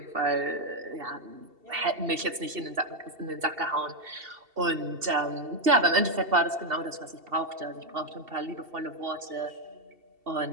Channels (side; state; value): left; late; 2.7 ms